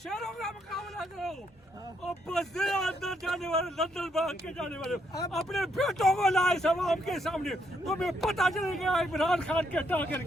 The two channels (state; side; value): normal; both; correlation 0.75